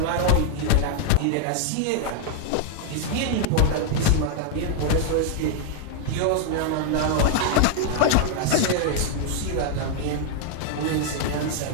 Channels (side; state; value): both; different; correlation 0.00